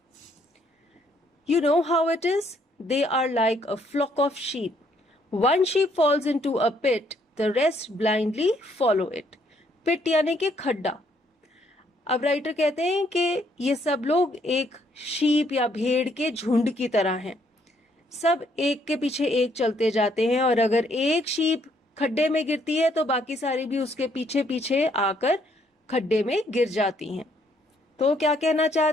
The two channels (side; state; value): both; normal; correlation 0.69